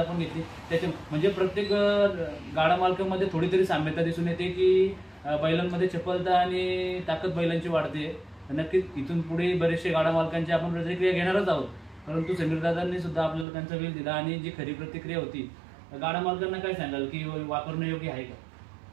घेतली. त्याच्या म्हणजे प्रत्येक गाडा मालकामध्ये थोडी तरी साम्यता दिसून येते की बैलांमध्ये चपलता आणि ताकद बैलांची वाढते. नक्कीच इथून पुढे बरेचसे गाडा मालकांची आपण प्रतिक्रिया घेणारच आहोत, परंतु समीर दादांनी सुद्धा आपल्याला त्यांचा वेळ दिला आणि जी खरी प्रतिक्रिया होती गाडा मालकांना काय सांगाल की वापरणं योग्य आहे का?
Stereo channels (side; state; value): left; drops out; at 13.5 s